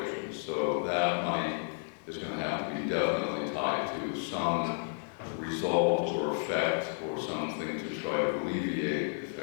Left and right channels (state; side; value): silent; right; 56 dB below the other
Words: So that money is going to have to be definitely tied to some result or effect or something to try to alleviate the